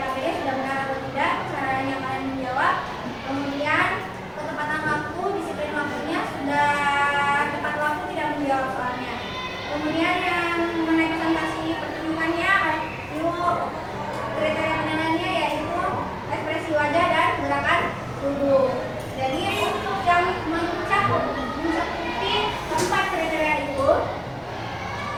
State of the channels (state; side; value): identical; both; correlation 1.00